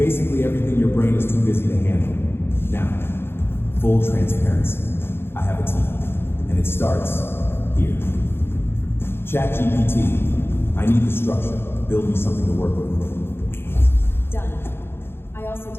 everything your brain is too busy to handle. Now, full transparency. I have a team, and it starts here. ChatGPT, I need the structure. Build me something to work with. Done. I also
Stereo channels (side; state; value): right; late; 0.11 ms